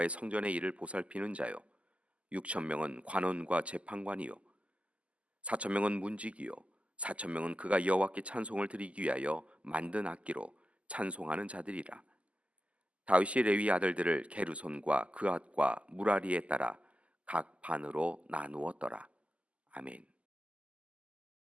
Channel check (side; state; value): left; late; 0.062 ms